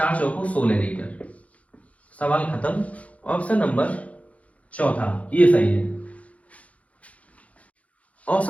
चौको 16 लीटर। सवाल खत्म। ऑप्शन नंबर चौथा ये सही है।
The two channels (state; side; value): late; right; 0.066 ms